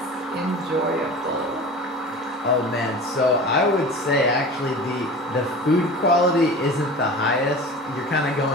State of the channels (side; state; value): both; normal; correlation 0.36